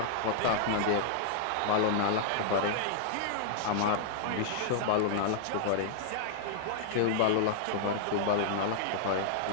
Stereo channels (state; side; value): different; both; correlation -0.01